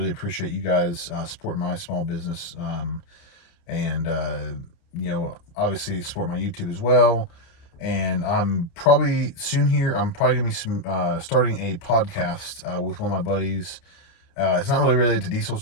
appreciate you guys supporting my small business. And obviously support my YouTube as well. And I'm probably soon here, I'm probably going to be starting a podcast with one of my buddies. It's not really related to diesel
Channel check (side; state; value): right; late; 29 ms